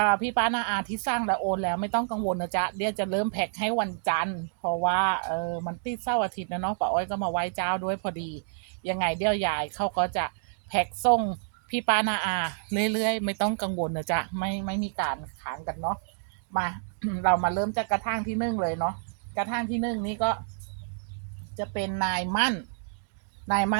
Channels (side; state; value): left; silent; digital silence